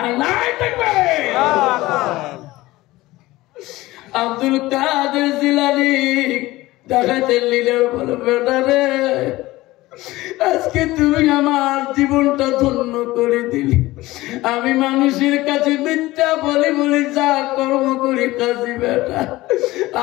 আব্দুল কাদের জিলানী ডাকাতের লিডার বলে, বেটারে আজকে তুমি আমার জীবনটা ধন্য করে দিলি। আমি মানুষের কাছে মিথ্যা বলি বলি যা কর্ম করি কাজী বেটা,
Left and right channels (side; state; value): right; quieter; 18.5 dB